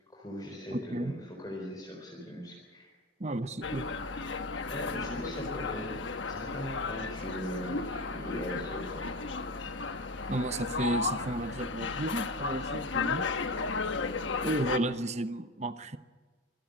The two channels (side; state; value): both; normal; correlation 0.26